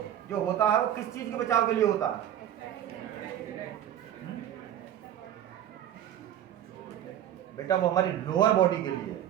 जो होता है वो किस चीज़ के बचाव के लिए होता है, बेटा वो हमारी लोअर बॉडी के लिए।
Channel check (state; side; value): quieter; left; 10.9 dB